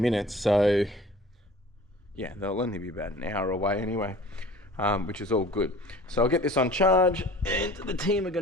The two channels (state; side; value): normal; both; correlation 0.44